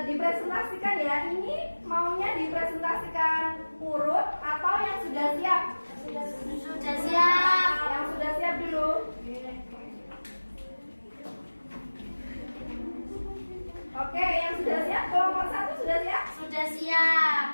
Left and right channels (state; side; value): inverted; both; correlation -1.00